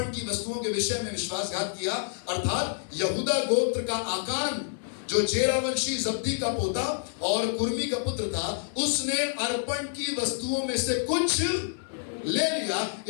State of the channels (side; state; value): right; silent; 59 dB below the other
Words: की वस्तुओं के विषय में विश्वासघात किया, अर्थात यहूदा गोत्र का आकान जो जेरा वंशी जब्दी का पोता और कुर्मी का पुत्र था, उसने अर्पण की वस्तुओं में से कुछ ले लिया।